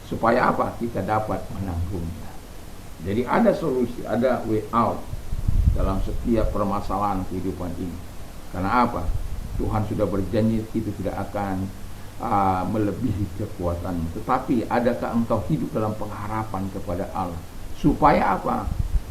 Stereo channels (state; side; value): identical; both; correlation 1.00